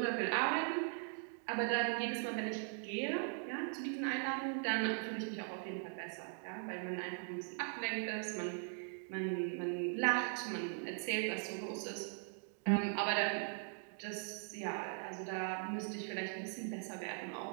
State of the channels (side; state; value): left; silent; 51 dB below the other